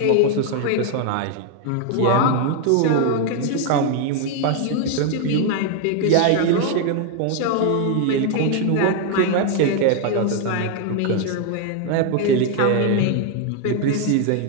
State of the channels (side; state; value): both; different; correlation 0.01